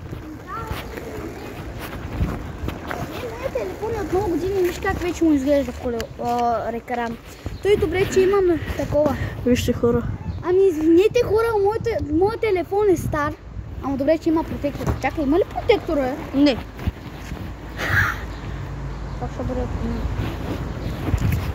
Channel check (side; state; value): both; identical; correlation 1.00